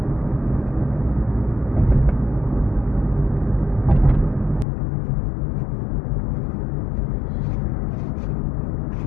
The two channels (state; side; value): drops out; right; at 4.7 s